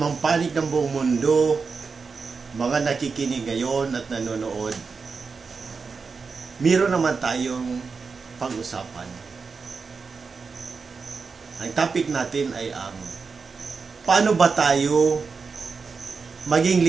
panig ng buong mundo, mga nakikinig ngayon at nanonood, meron naman tayong pag-usapan. Ang topic natin ay ang paano ba tayo maging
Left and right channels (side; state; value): left; quieter; 4.9 dB